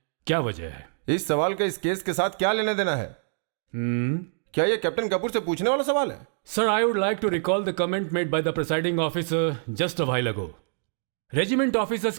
क्या वजह है? इस सवाल का इस केस के साथ क्या लेना देना है? क्या यह कैप्टन कपूर से पूछने वाला सवाल है? Sir, I would like to recall the comment made by the presiding officer just a while ago. Regiment officers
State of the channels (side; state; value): left; silent; digital silence